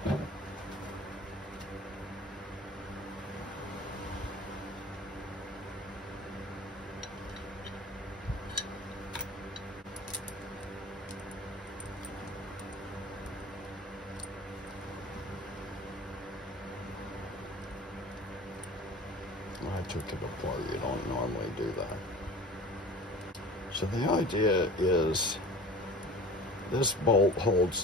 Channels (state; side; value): normal; both; correlation 0.41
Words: I took it apart. You don't normally do that. So the idea is this bolt